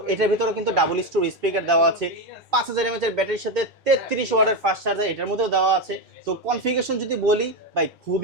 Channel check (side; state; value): both; normal; correlation 0.12